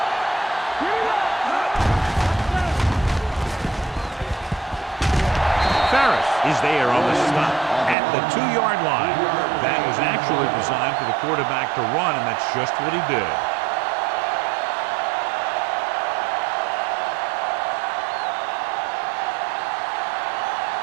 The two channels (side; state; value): left; drops out; at 8.0 s